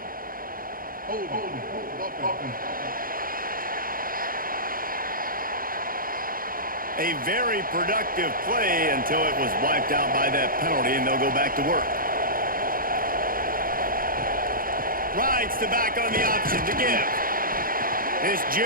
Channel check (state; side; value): late; left; 0.41 ms